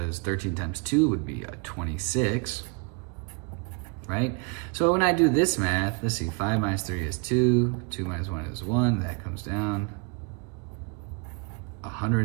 13 times 2 would be a 26, right? So when I do this math, let's see, 5 minus 3 is 2, 2 minus 1 is 1, that comes down.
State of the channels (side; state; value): left; quieter; 31.2 dB